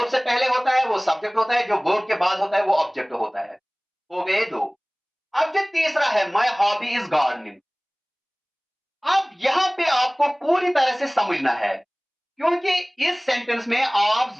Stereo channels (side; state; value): both; identical; correlation 1.00